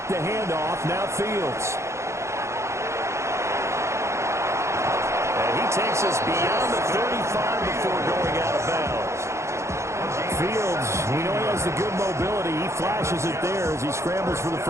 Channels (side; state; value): left; late; 0.14 ms